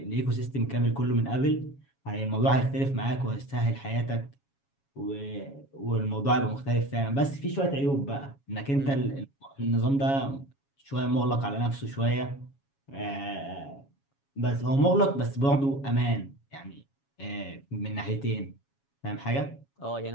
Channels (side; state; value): right; late; 7.2 ms